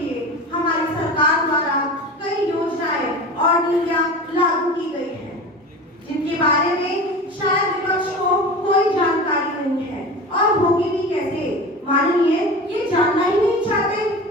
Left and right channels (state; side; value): normal; both; correlation 0.32